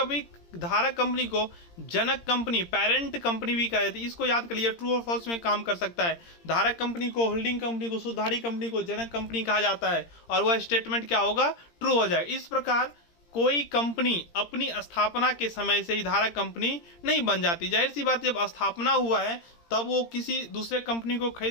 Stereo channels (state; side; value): late; right; 17 ms